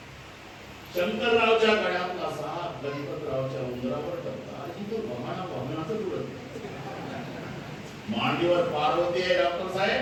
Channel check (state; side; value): identical; both; correlation 1.00